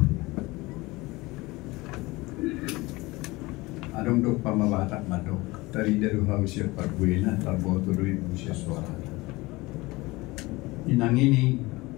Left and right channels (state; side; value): quieter; right; 21.8 dB